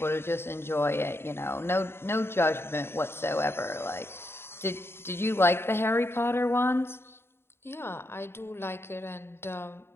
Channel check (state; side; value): late; right; 0.11 ms